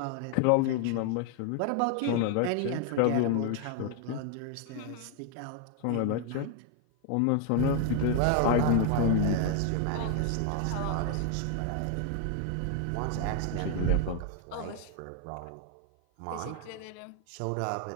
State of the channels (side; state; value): both; different; correlation 0.00